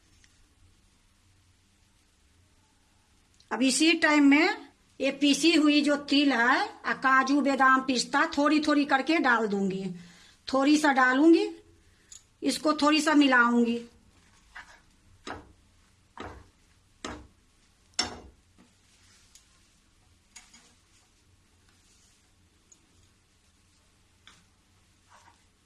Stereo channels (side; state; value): both; identical; correlation 1.00